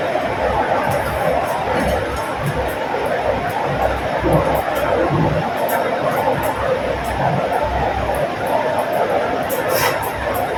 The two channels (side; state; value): both; identical; correlation 1.00